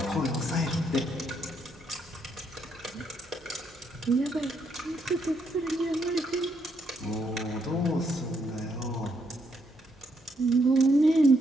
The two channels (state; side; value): normal; both; correlation 0.75